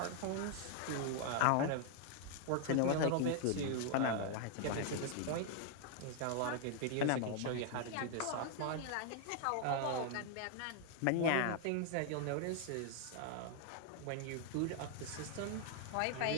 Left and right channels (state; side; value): different; both; correlation 0.00